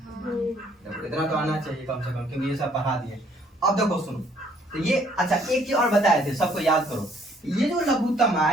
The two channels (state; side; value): normal; both; correlation 0.63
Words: इतना तो आना चाहिए कम से कम, क्योंकि ये सब पढ़ा दिए। अब देखो सुनो, तो ये अच्छा एक चीज और बताए थे, सबको याद करो, ये जो लघुत्तम